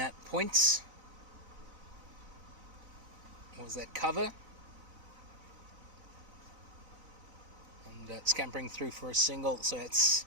at points. Was that cover? And scampering through for a single. So it's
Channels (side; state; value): left; late; 2.3 ms